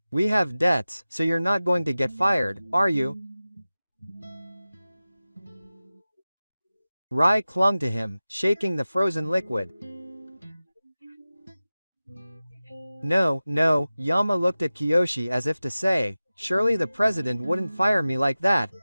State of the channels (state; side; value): inverted; both; correlation -0.96